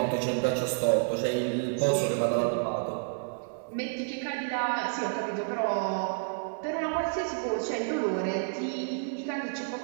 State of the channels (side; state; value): left; silent; digital silence